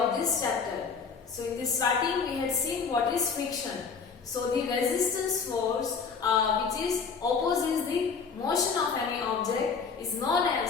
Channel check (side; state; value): right; quieter; 5.5 dB